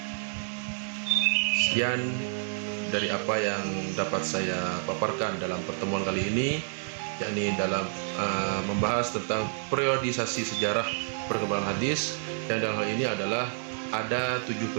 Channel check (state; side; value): silent; left; 59 dB below the other